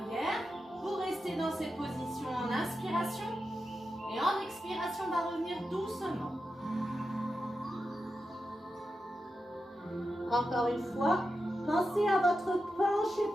Vous restez dans cette position en inspiration. Et en expiration, on va revenir doucement. Encore une fois, pensez à votre plancher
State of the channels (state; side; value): normal; both; correlation 0.90